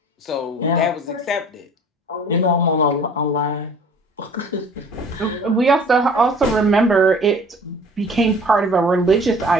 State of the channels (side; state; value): both; normal; correlation 0.48